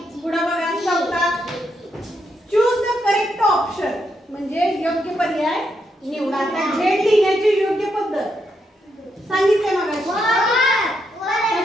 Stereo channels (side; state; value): both; normal; correlation 0.80